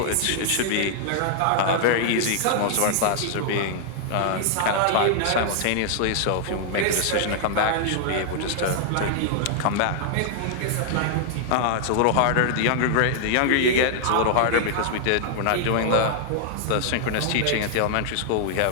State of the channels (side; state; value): both; different; correlation -0.01